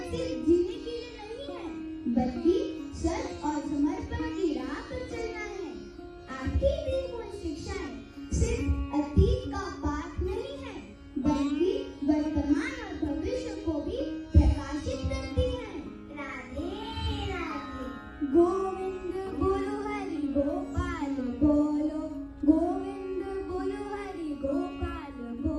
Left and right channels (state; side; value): identical; both; correlation 1.00